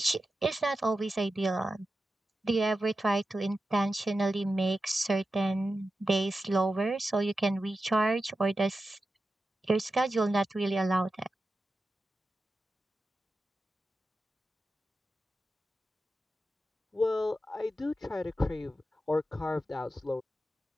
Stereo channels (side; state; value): both; normal; correlation 0.92